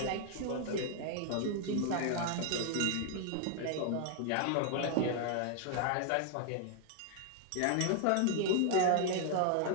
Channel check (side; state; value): both; different; correlation 0.00